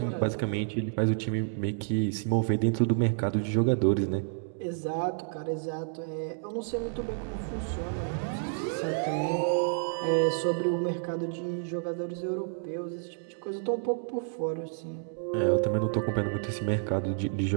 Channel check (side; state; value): left; silent; digital silence